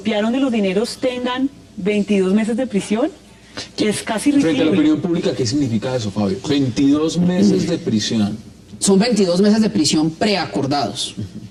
de los dineros tengan 22 meses de prisión, es casi ridículo. Frente a la opinión pública, ¿qué significa eso, Fabio? 22 meses de prisión. Son 22 meses de prisión preacordados.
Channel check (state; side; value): identical; both; correlation 1.00